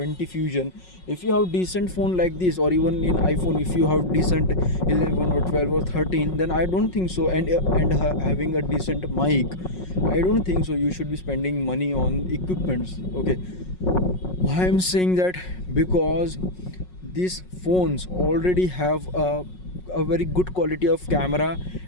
Fusion, if you have decent phone like this, or even in iPhone, if you have decent 11 or 12 or 13, then I don't think so. And having a decent mic, I don't think so. You should be spending money on equipments. Okay, why I'm saying that? Because these phones already have a very good quality of camera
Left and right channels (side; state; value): right; late; 5.5 ms